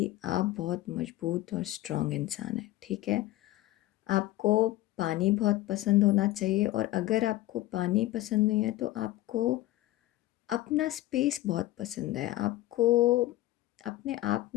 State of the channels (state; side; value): quieter; right; 16.5 dB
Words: आप बहुत मजबूत और स्ट्रॉन्ग इंसान हैं, ठीक है? आपको पानी बहुत पसंद होना चाहिए, और अगर आपको पानी पसंद नहीं है तो आपको अपना स्पेस बहुत पसंद है। आपको अपने आप